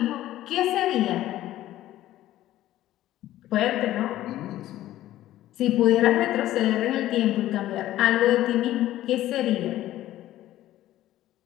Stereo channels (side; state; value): right; quieter; 14.1 dB